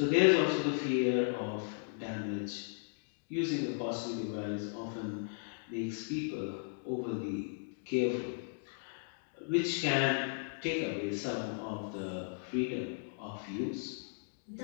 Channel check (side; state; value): right; silent; digital silence